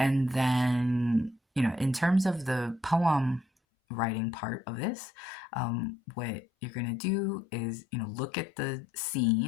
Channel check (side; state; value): right; drops out; at 3.5 s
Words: then, in terms of the poem writing part of this, what you're going to do is, look at the